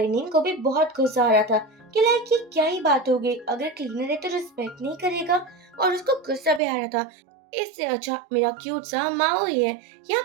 नींद को भी बहुत गुस्सा आ रहा था कि लाइक ये क्या ही बात हो गई, अगर क्लीनर है तो रिस्पेक्ट नहीं करेगा। और उसको गुस्सा भी आ रहा था, इससे अच्छा मेरा क्यूट सा माओ ही है। यहाँ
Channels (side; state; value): left; drops out; at 6.6 s